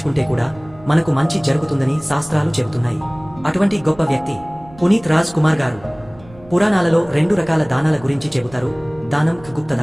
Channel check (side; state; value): right; noise; rumble, 22 dB below the sound